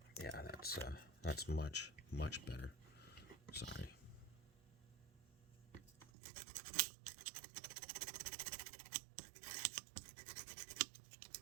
Yeah, that's much better. Sorry.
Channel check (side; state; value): left; drops out; at 6.1 s